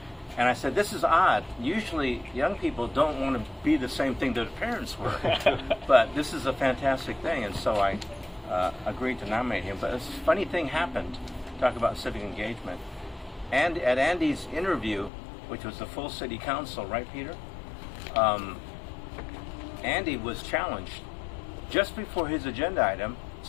And I said, this is odd. Usually young people don't want to be the same thing that their parents were. But this is a fantastic thing. And so I agreed to nominate him. But a funny thing happened. Talk about civic engagement. And at Andy's interview, which was the full city council, right, Peter? Andy was challenged. Just before his agenda item,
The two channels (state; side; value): drops out; right; at 15.1 s